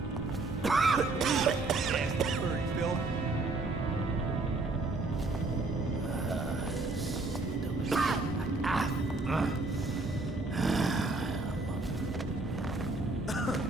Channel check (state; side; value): quieter; left; 3.2 dB